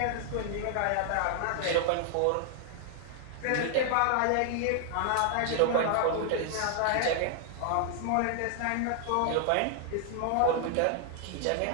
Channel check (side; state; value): both; different; correlation 0.00